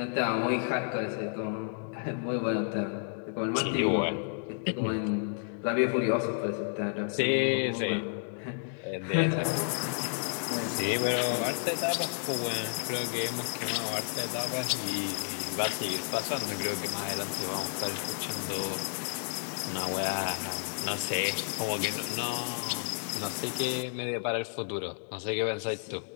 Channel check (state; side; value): silent; right; 57 dB below the other